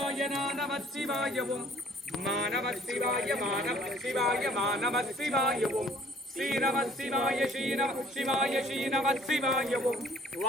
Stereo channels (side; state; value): both; normal; correlation 0.55